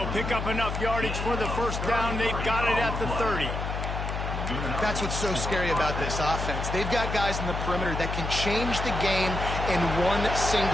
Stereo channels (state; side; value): noise; left; hum, 4 dB below the sound